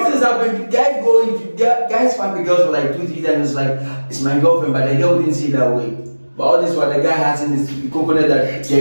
things happen. Guys fuck the girls for like 2-3 times. It's like it's my girlfriend, but the girl didn't see it that way. But all this while the guy has in his coconut that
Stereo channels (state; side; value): inverted; both; correlation -1.00